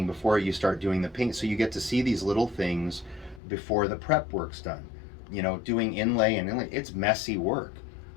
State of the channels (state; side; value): drops out; right; at 3.4 s